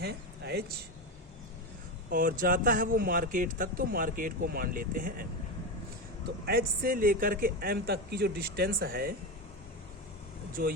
H, और जाता है वो मार्केट तक, तो मार्केट को मान लेते हैं M। तो H से लेकर के M तक की जो डिस्टेंस है, जो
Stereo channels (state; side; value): normal; both; correlation 0.16